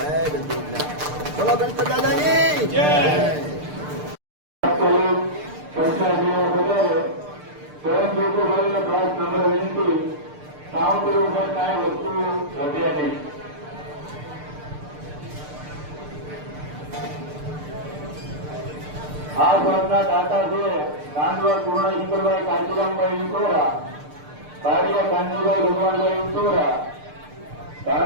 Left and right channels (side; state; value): left; late; 6.7 ms